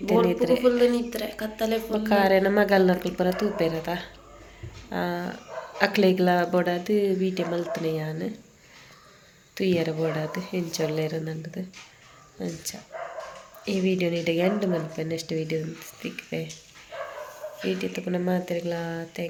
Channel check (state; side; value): identical; both; correlation 1.00